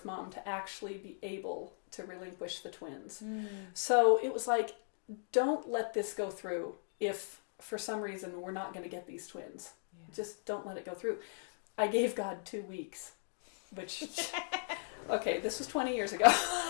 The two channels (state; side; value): silent; right; digital silence